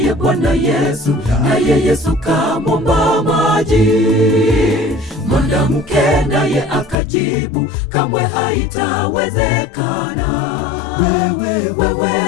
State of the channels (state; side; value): drops out; right; at 7.0 s